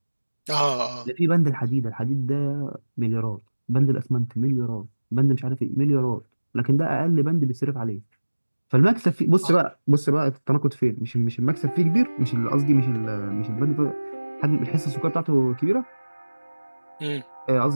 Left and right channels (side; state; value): both; inverted; correlation -1.00